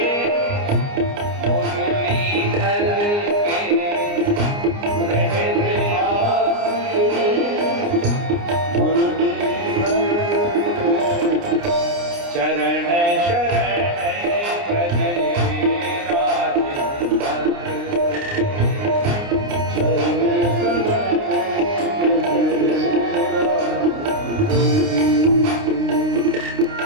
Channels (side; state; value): left; late; 29 ms